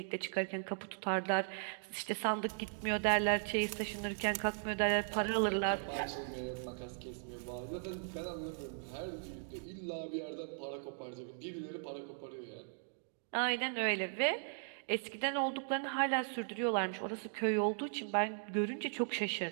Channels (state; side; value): silent; left; digital silence